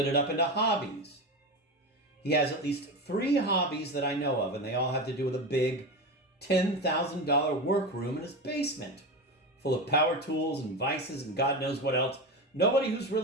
it up into hobbies. He has at least 3 hobbies that I know of, and they all have to do with a big $10,000 workroom in his basement, full of power tools and vices and God knows what else. Nobody who's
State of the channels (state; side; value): normal; both; correlation 0.21